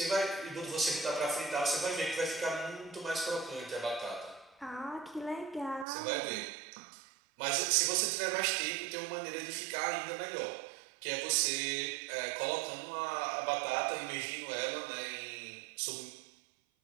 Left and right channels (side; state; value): left; drops out; at 5.9 s